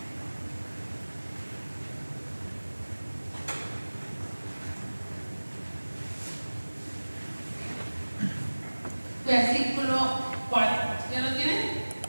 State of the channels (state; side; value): inverted; both; correlation -1.00